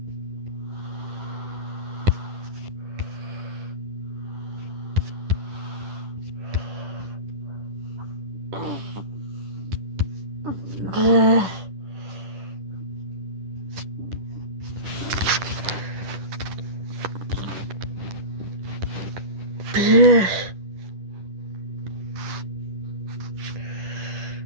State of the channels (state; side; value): late; left; 10 ms